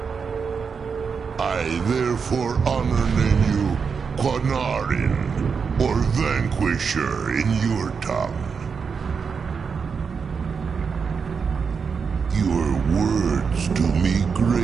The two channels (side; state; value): left; quieter; 5.8 dB